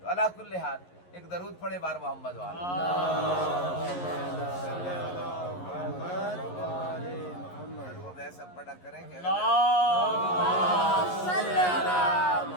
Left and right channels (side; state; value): right; late; 11 ms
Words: تو علی کل حال ایک درود پڑھے بار محمد والا، درود ایسا پڑھا کریں کہ